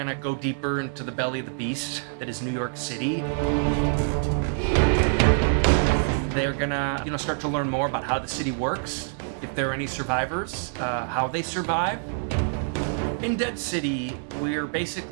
go deeper into the belly of the beast that is New York City. They're gonna, start to learn more about how the city works, if there are any survivors, how they survive. In Dead City, we're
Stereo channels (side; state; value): left; silent; digital silence